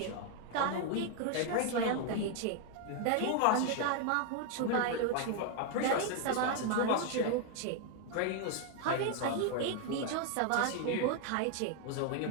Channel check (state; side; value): different; both; correlation 0.01